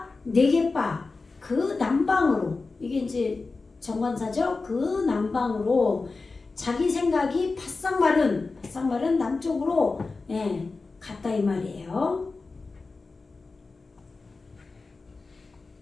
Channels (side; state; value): right; quieter; 3.9 dB